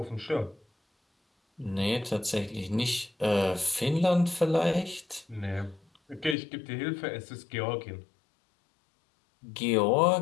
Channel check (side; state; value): right; drops out; at 6.4 s